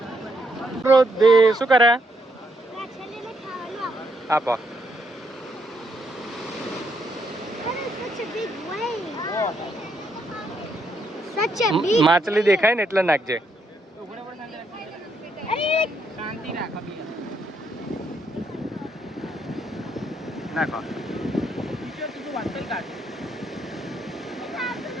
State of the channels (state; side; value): normal; both; correlation 0.75